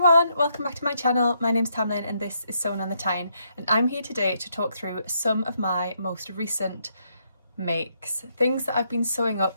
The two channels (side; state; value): both; inverted; correlation -0.75